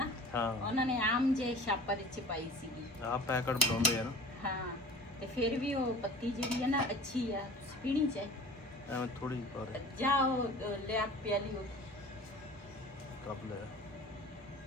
ਉਹਨਾਂ ਨੇ ਆਮ ਜੇ ਛਾਪਰ ਚ ਪਾਈ ਸੀਗੀ, ਆ ਪੈਕਟ ਬਣਾਉਂਦੇ ਆ ਨਾ। ਹਾਂ, ਤੇ ਫਿਰ ਵੀ ਉਹ ਪੱਤੀ ਜਿਹੜੀ ਆ ਨਾ ਅੱਛੀ ਆ, ਪੀਣੀ ਚਾਹੀਦੀ। ਐਵੇਂ ਥੋੜੀ ਪਰ ਜਾਓ ਲਿਆ ਪਿਆਲੀ ਉਹ ਕੱਪ ਲੈ।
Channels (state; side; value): normal; both; correlation 0.41